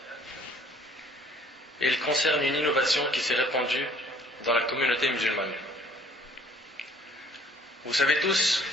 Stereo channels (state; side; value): normal; both; correlation 0.57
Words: et il concerne une innovation qui s'est répandue dans la communauté musulmane. Vous savez tous,